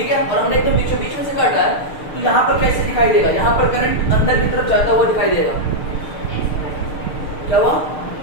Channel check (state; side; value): late; right; 6.6 ms